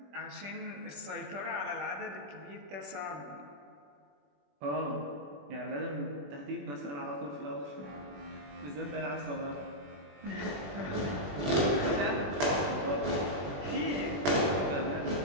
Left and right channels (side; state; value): left; late; 21 ms